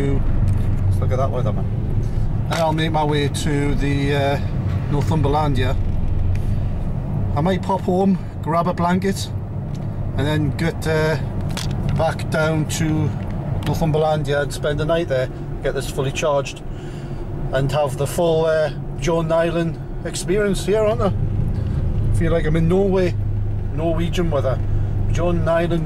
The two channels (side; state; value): both; identical; correlation 1.00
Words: let's look at that weather, man. And I'll make my way to the Northumberlandia. I might pop home, grab a blanket, and then get back down to Northumberlandia and spend the night there, get this fully charged, and have the full John Island experience here, aren't I? Feel like I'm in Norway, Norwegian weather. John